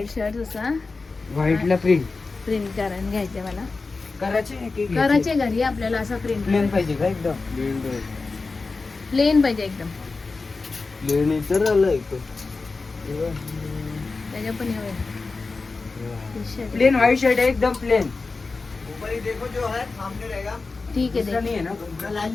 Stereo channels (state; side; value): quieter; right; 4.0 dB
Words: शर्ट असा व्हाईटला प्रिंट प्रिंट करून घ्यायचे मला. करायचे घरी आपल्याला असं प्रिंट प्लेन पाहिजे का एकदम? प्लेन पाहिजे एकदम. प्लेन तर आलं त्याच्या पण प्लेन व्हाईट शर्ट है एकदम प्लेन. ऊपर ही देखो जो है सामने रहेगा. ठीक है दूसरा नहीं है ना? लाइन